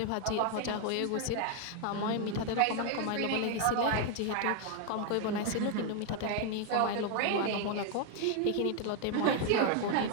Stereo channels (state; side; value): different; both; correlation 0.01